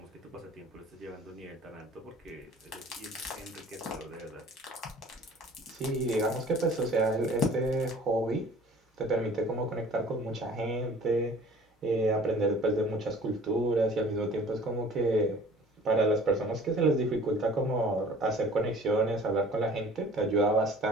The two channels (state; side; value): normal; both; correlation 0.49